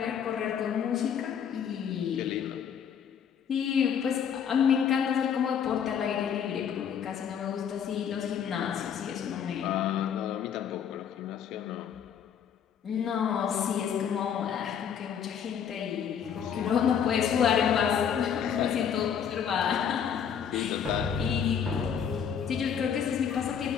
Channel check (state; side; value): quieter; right; 8.0 dB